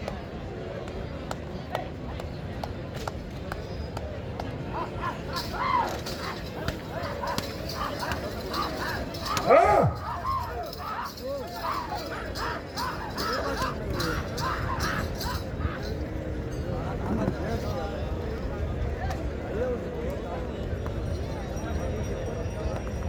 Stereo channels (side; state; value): both; identical; correlation 1.00